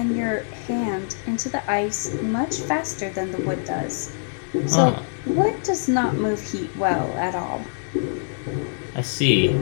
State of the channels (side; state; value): right; silent; digital silence